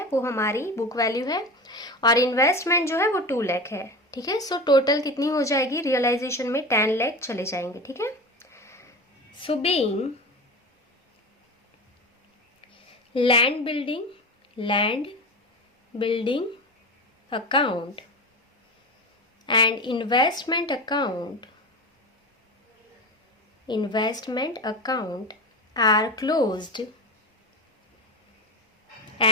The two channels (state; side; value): normal; both; correlation 0.26